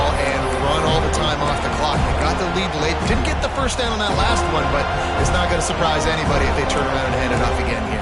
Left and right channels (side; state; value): both; identical; correlation 1.00